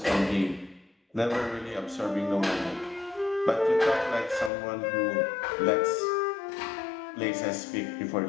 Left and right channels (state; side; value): drops out; right; at 4.5 s